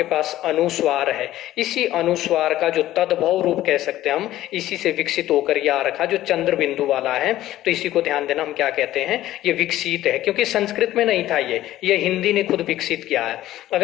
पास अनुस्वार है, इसी अनुस्वार का जो तद्भव रूप कह सकते हैं हम, इसी से विकसित होकर ये आ रखा जो चंद्र बिंदु वाला है, तो इसी को ध्यान देना, हम क्या कहते हैं, ये विकसित है, क्योंकि संस्कृत में नहीं था, ये हिंदी ने खुद विकसित किया है।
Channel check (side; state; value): right; quieter; 14.4 dB